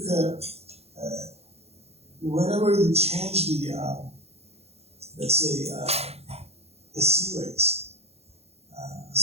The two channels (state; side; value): late; left; 0.30 ms